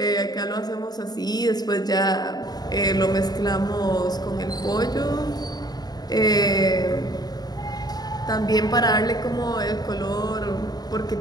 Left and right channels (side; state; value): right; late; 0.19 ms